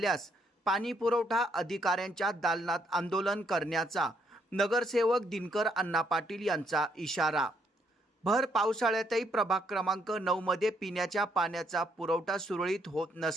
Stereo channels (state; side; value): normal; both; correlation 0.72